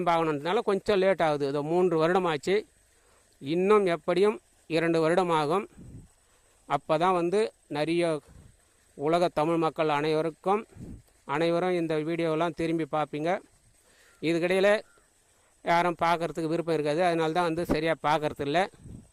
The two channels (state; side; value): identical; both; correlation 1.00